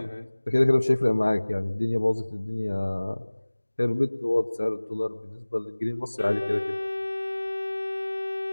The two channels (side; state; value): both; inverted; correlation -1.00